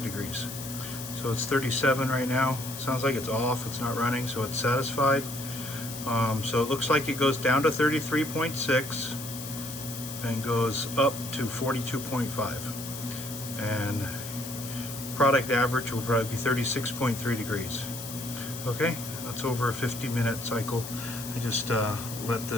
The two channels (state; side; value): noise; left; hiss, 10 dB below the sound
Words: degrees. So it's 37 right now. Sounds like it's off, it's not running, so it's satisfied. So it looks like it goes down to 33.6 and goes up to 42.5. And product average will probably be 36.3 degrees. Okay, that's over a 50-minute cycle. I just let